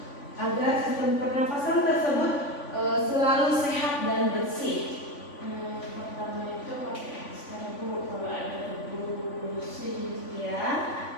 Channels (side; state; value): right; late; 3.5 ms